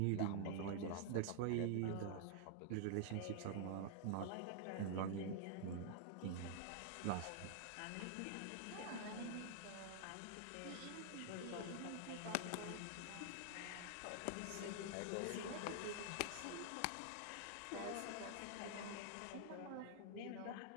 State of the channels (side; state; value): both; different; correlation -0.01